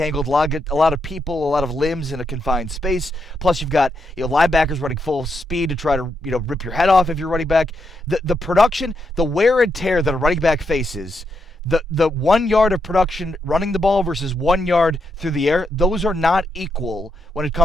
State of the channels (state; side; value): normal; both; correlation 0.81